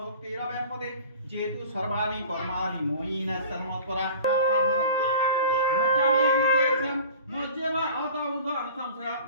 ভুক্তিরব্যাপতে যেতু সর্বাণি কর্মাণি ময়িন সন্মৎপরা মজ্জামেহিতেস্যম মজ্জেম অত ঊর্ধ্বং সংশয়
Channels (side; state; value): both; inverted; correlation -0.42